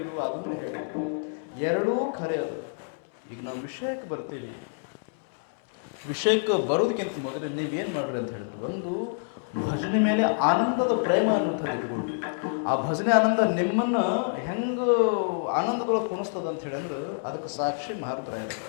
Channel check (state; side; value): silent; right; 60 dB below the other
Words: ಅದನ್ನು ಹೇಳಿದ್ರು. ಎರಡೂ ಖರೆ ಅದು. ಈಗ ನಾವು ವಿಷಯಕ್ಕೆ ಬರ್ತೀವಿ. ವಿಷಯಕ್ಕೆ ಬರೋದಕ್ಕಿಂತ ಮೊದಲು ನೀವೇನು ಮಾಡ್ರಿ ಅಂತ ಹೇಳಿದ್ರು, ಒಂದು ಭಜನೆ ಮೇಲೆ ಆನಂದದ ಪ್ರೇಮ ಅನ್ನುವಂಥದ್ದು ಇಟ್ಕೊಳ್ರಿ. ಆ ಭಜನೆ ಆನಂದ ನಿಮ್ಮನ್ನ ಹೆಂಗೆ ಆನಂದದೊಳಗೆ ಕುಣಿಸ್ತದ ಅಂತ ಹೇಳಿ ಅಂದ್ರೆ ಅದಕ್ಕೆ ಸಾಕ್ಷಿ ಮಹಾರುದ್ರಾಯರು.